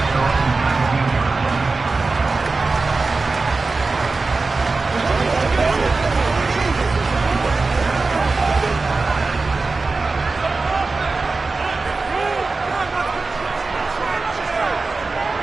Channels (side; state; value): left; quieter; 3.8 dB